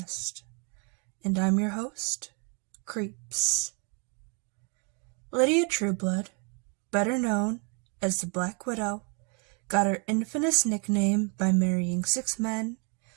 and I'm your host, Creeps. Lydia Trueblood, better known as the Black Widow, got her infamous nickname by marrying 6 men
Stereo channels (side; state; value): left; quieter; 35.7 dB